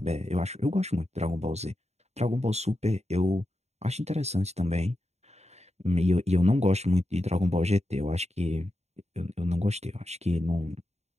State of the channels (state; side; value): late; left; 0.32 ms